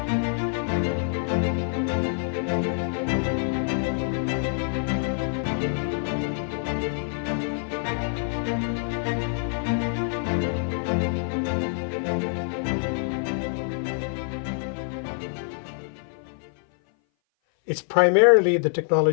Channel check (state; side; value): silent; right; 58 dB below the other